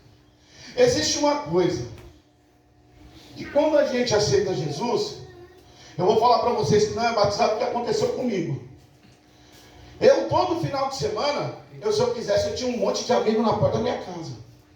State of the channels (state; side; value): identical; both; correlation 1.00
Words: Existe uma coisa, que quando a gente aceita Jesus, eu vou falar para vocês que não é batizado, o que aconteceu comigo. Eu, todo final de semana, se eu quisesse, eu tinha um monte de amigos na porta da minha casa.